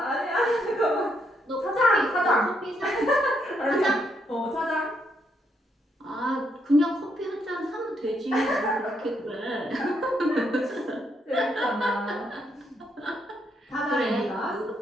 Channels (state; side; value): normal; both; correlation 0.76